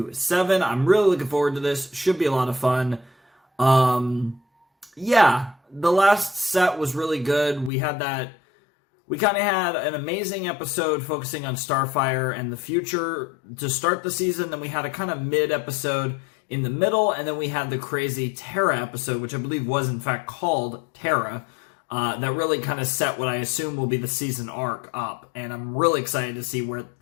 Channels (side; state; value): right; drops out; at 7.7 s